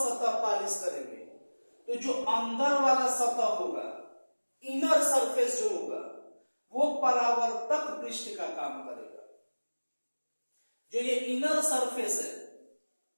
पॉलिश करेंगे, तो जो अंदर वाला सतह होगा, इनर सरफेस जो होगा, वो परावर्तक पृष्ठ का काम करेगा। जो ये इनर सरफेस है,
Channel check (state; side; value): inverted; both; correlation -1.00